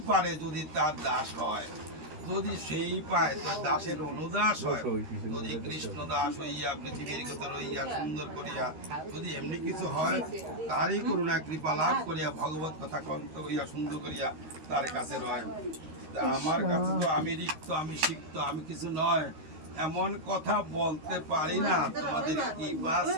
পারে যদি তার দাস হয়, যদি সেই পায় তার দাসের অনুদাস হয়, যদি কৃষ্ণ দাস হইয়া পৃথিবীর কথা রইয়া সুন্দর করিয়া যদি এমনি কিছু হয়, তারই করুণা কৃপা লাভ করিয়া ভগবত কথা কন্ত হইয়া সুন্দর করিয়া তার কাছে রয়। তা আমার কাছে তো আমি রিক্ত, আমি সিক্ত, আমি কিছু নয়, এমন কথা বলতে পারি না তোমাদের কৃপা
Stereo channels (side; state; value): left; late; 13 ms